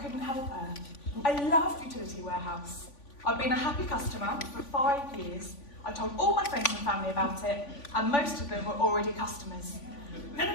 help her. I loved Utility Warehouse. I'd been a happy customer for 5 years. I told all my friends and family about it, and most of them were already customers. No,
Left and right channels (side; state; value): right; late; 3.5 ms